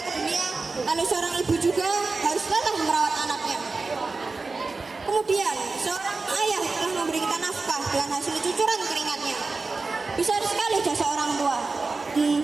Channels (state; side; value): quieter; left; 3.9 dB